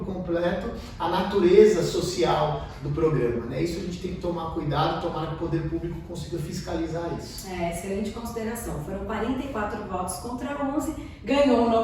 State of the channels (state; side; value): identical; both; correlation 1.00